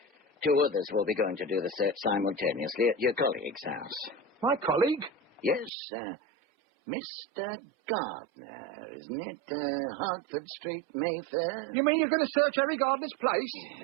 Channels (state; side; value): drops out; left; at 5.7 s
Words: 2 others will be going to do the search simultaneously at your colleague's house. My colleague? Yes, Mr. Gardner, isn't it? Hertford Street, Mayfair. You mean you're going to search Harry Gardner's place?